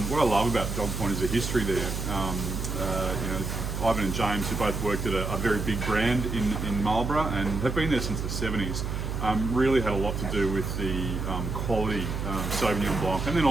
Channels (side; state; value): right; noise; hum, 3 dB below the sound